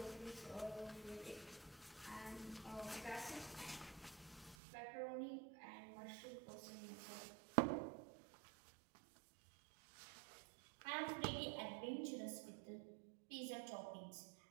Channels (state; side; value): drops out; left; at 4.5 s